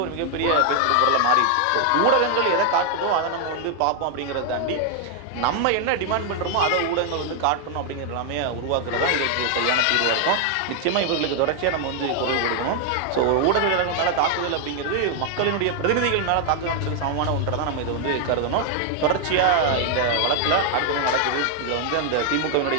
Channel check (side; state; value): both; different; correlation 0.00